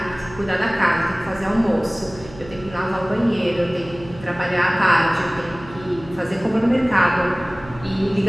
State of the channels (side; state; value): right; noise; hum, 18 dB below the sound